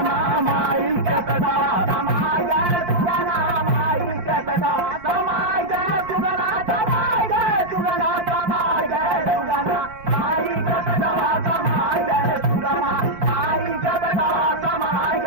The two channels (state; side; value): late; left; 5.7 ms